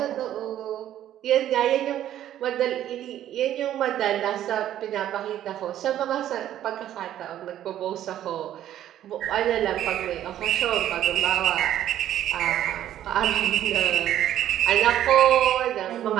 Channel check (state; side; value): quieter; left; 11.8 dB